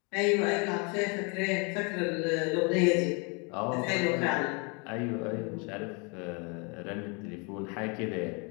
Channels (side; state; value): right; quieter; 33.2 dB